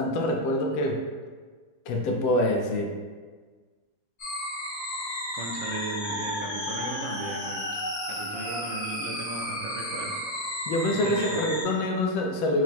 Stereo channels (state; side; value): normal; both; correlation 0.04